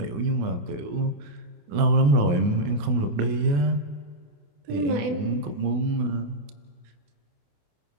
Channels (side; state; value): left; late; 28 ms